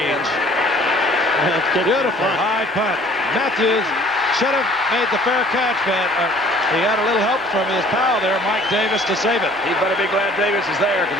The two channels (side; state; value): both; normal; correlation 0.53